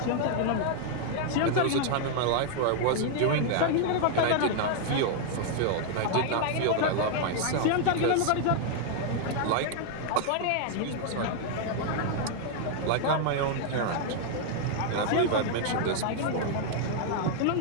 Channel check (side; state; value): both; different; correlation 0.00